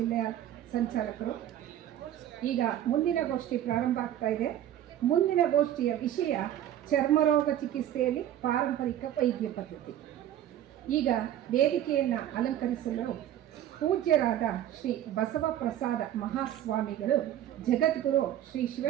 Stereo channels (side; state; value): left; quieter; 11.6 dB